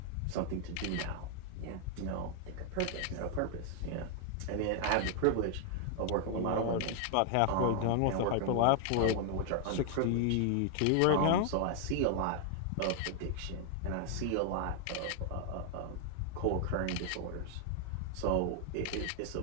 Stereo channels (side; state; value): both; different; correlation 0.00